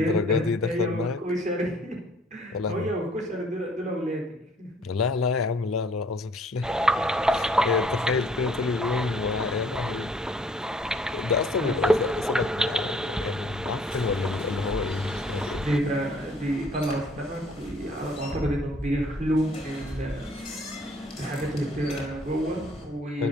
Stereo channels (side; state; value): both; normal; correlation 0.59